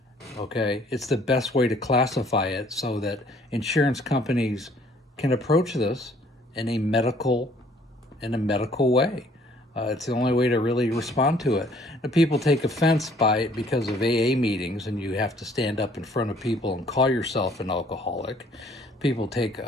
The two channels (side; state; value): both; normal; correlation 0.59